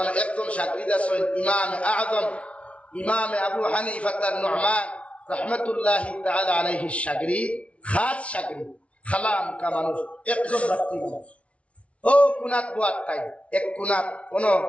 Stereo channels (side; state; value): right; late; 0.063 ms